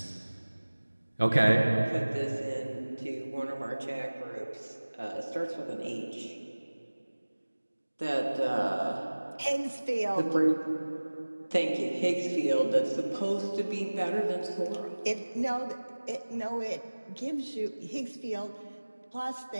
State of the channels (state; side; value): inverted; both; correlation -1.00